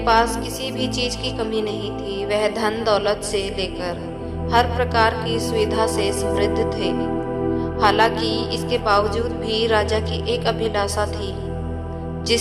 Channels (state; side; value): identical; both; correlation 1.00